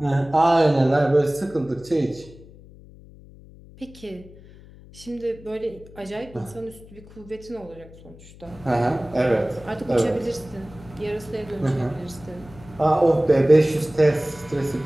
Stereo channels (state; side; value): noise; left; hum, 21 dB below the sound